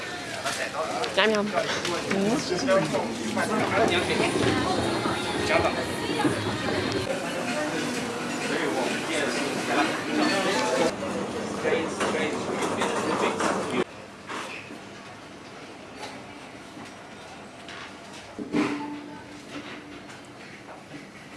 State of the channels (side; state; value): both; identical; correlation 1.00